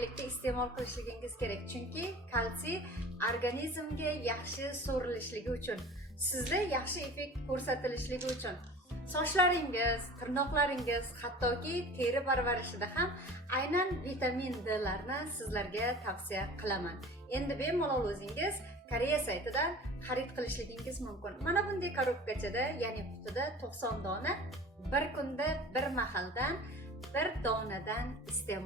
iste'mol qilishligingiz kerak. Chunki kalsiy organizmga yaxshi so'rilishligi uchun, sizda yaxshi effekt ko'rsatilishligi uchun, sochlaringiz, tirnoqlaringiz, hattoki teri parvarishida ham aynan vitamin D larni sizlarga tavsiya qilaman. Endi bemalol o'zingiz Koreya saytidan xarid qilishligingiz mumkin. Mana bunday korobkachada, ya'ni qutida 90 dona bir kunda bir mahaldan bir donadan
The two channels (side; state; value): both; normal; correlation 0.40